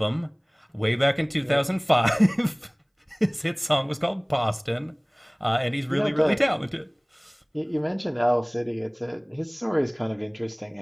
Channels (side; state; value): both; identical; correlation 1.00